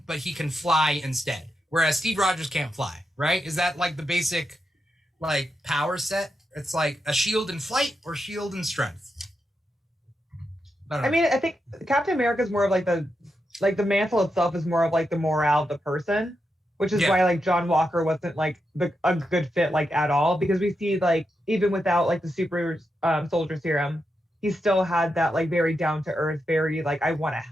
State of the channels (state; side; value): normal; both; correlation 0.86